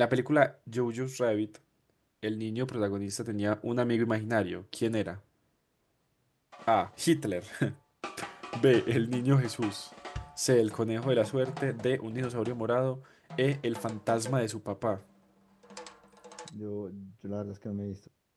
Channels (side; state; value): both; identical; correlation 1.00